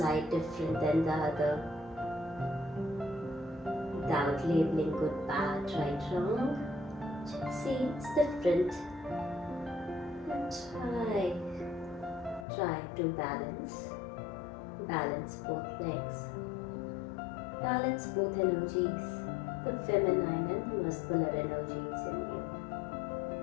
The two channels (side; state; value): right; drops out; at 12.5 s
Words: different than the other? Without labeling good, bad, right, wrong. Just see it's different. And try to balance. Balance both legs. Balance both energies. The feminine and the muscular energies in you.